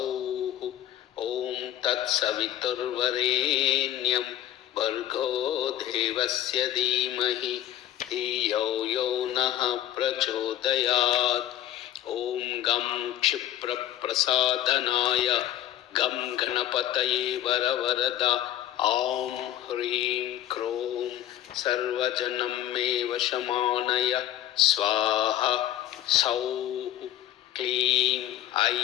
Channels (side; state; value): right; quieter; 12.7 dB